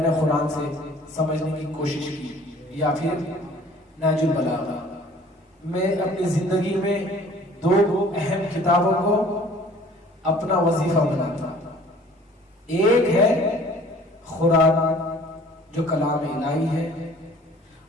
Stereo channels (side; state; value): both; normal; correlation 0.52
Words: قرآن سے سمجھنے کی کوشش کی یا پھر نہج البلاغہ. میں اپنی زندگی میں 2 اہم کتابوں کو اپنا وظیفہ بناتا. ایک ہے قرآن جو کلام الہی ہے،